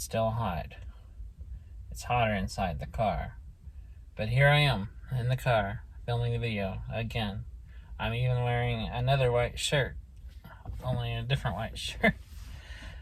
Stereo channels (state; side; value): identical; both; correlation 1.00